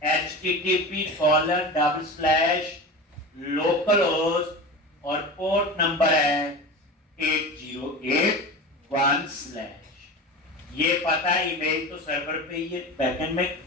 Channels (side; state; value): both; normal; correlation 0.29